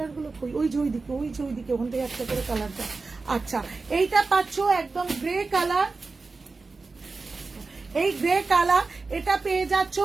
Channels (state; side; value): quieter; left; 4.0 dB